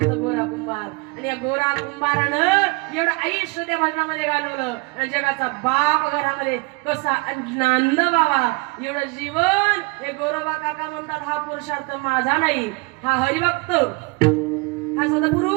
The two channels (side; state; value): left; quieter; 28.1 dB